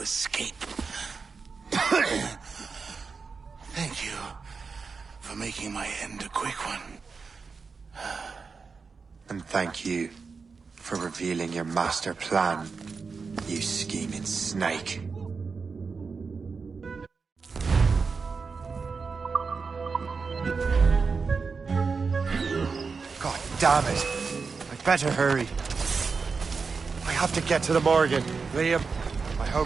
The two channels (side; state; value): left; quieter; 4.9 dB